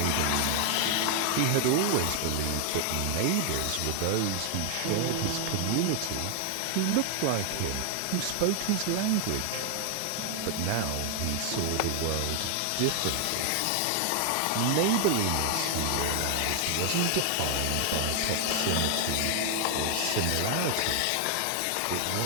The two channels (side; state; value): both; different; correlation 0.00